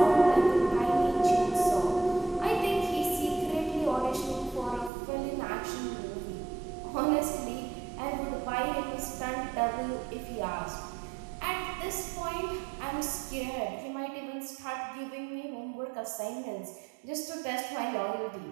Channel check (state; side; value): drops out; left; at 4.9 s